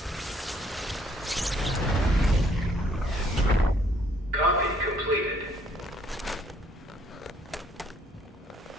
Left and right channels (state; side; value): normal; both; correlation 0.65